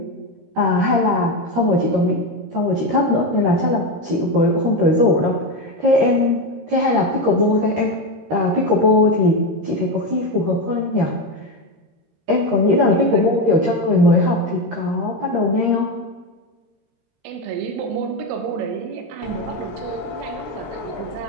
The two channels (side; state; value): left; late; 13 ms